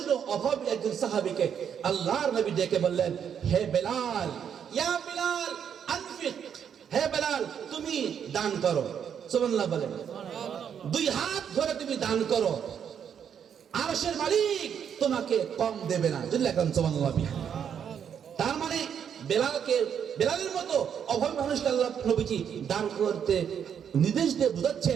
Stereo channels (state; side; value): quieter; left; 8.1 dB